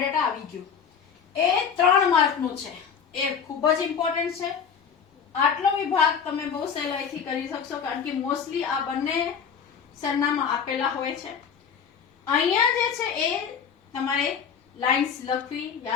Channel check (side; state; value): right; quieter; 6.9 dB